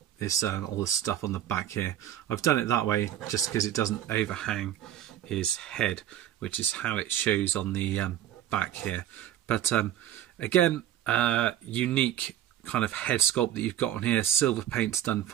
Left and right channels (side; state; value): left; quieter; 11.6 dB